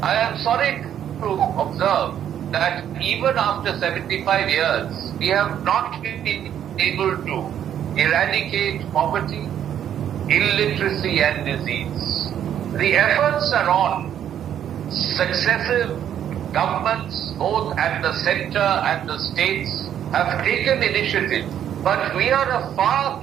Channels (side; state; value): left; quieter; 10.0 dB